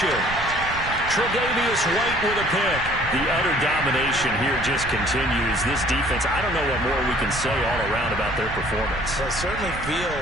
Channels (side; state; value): right; noise; rumble, 11 dB below the sound